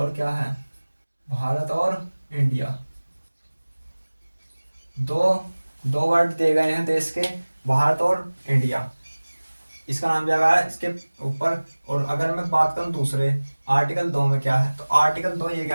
क्या है, भारत और इंडिया। दो दो वर्ड दिए गए हैं देश के, भारत और इंडिया। इसका नाम दिया गया है इसके ऊपर। और अगर मैं बात करूं दूसरे आर्टिकल 2 में क्या है, तो आर्टिकल 2 ये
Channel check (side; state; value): both; inverted; correlation -1.00